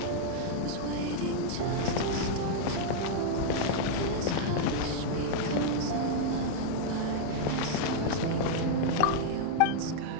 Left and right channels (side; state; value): both; different; correlation -0.01